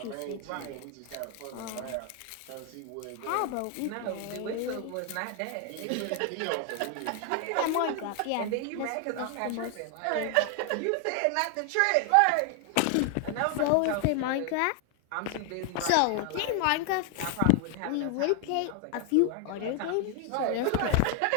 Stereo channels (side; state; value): both; different; correlation 0.00